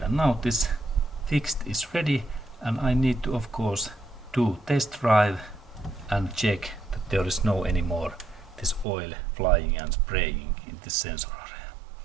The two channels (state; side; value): drops out; left; at 8.8 s